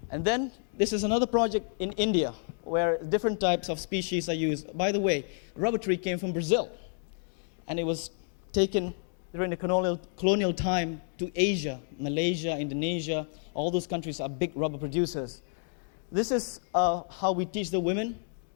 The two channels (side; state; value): right; silent; 58 dB below the other